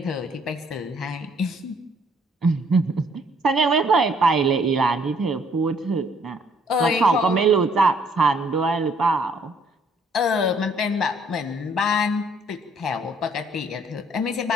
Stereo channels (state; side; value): normal; both; correlation 0.64